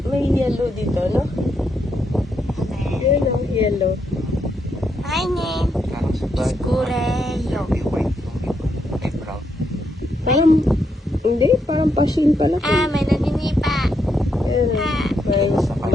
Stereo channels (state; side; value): normal; both; correlation 0.79